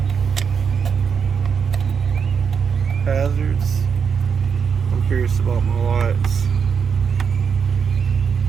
Hazards. I'm curious about my lights.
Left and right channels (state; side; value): quieter; left; 6.5 dB